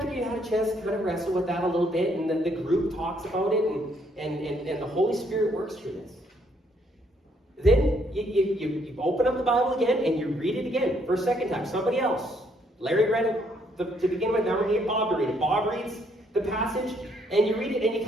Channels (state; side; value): normal; both; correlation 0.70